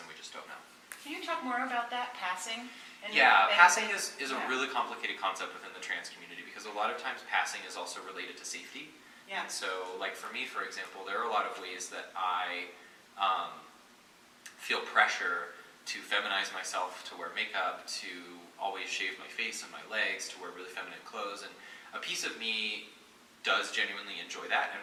we just don't know. Can you talk more about that, passing? Passing is a really complicated concept within the trans community because a lot of times passing is also related to safety. Yeah. And so, like for me, for example, there are a lot of ways that I feel pressure to feminize myself, to wear makeup, to always shave my face and my legs, to wear really feminine clothes. And a piece of me does genuinely enjoy that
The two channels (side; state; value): both; identical; correlation 1.00